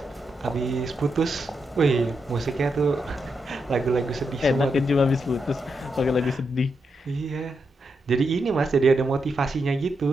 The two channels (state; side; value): normal; both; correlation 0.83